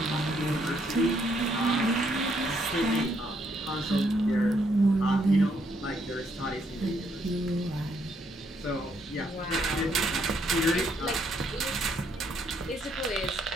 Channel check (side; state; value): both; normal; correlation 0.72